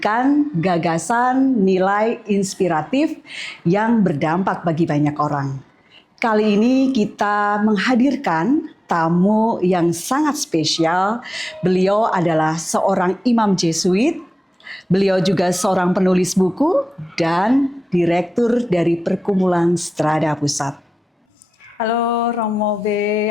gagasan, nilai inspiratif yang berdampak bagi banyak orang. Kali ini kita menghadirkan tamu yang sangat spesial. Beliau adalah seorang imam Jesuit. Beliau juga seorang penulis buku dan direktur dari Perkumpulan Strada Pusat. Halo Romo B,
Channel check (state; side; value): normal; both; correlation 0.95